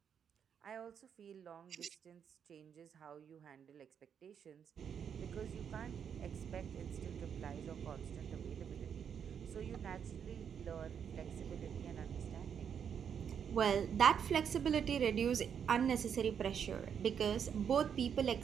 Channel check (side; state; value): left; quieter; 7.8 dB